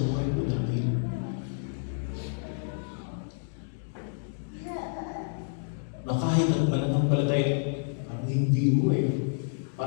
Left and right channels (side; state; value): right; silent; digital silence